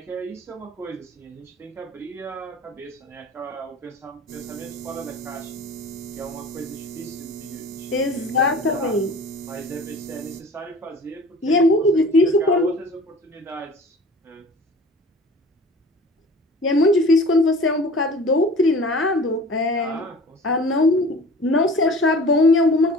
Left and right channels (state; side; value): normal; both; correlation 0.43